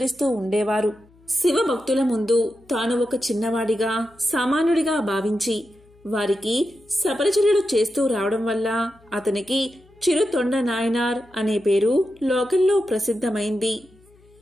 ఉండేవారు. శివభక్తుల ముందు తాను ఒక చిన్నవాడిగా, సామాన్యుడిగా భావించి వారికి సపరిచర్యలు చేస్తూ రావడం వల్ల అతనికి చిరుతొండ నాయనార్ అనే పేరు లోకంలో ప్రసిద్ధమైంది.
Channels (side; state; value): left; noise; hum, 29 dB below the sound